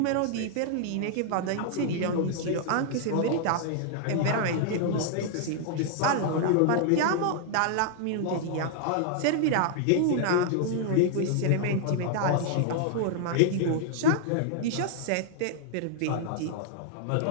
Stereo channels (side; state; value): both; different; correlation 0.00